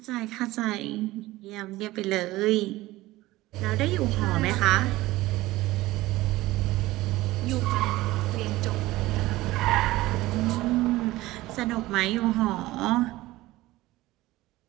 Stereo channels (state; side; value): quieter; left; 18.0 dB